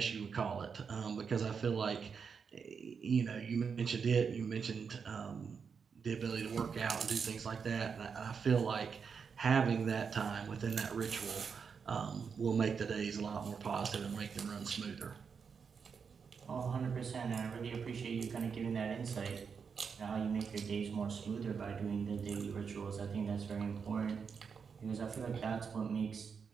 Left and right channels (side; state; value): left; quieter; 6.1 dB